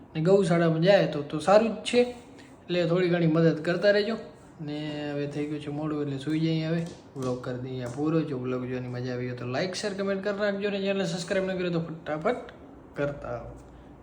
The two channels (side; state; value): both; identical; correlation 1.00